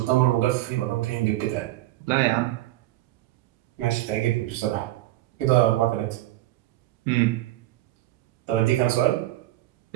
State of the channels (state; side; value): quieter; left; 16.1 dB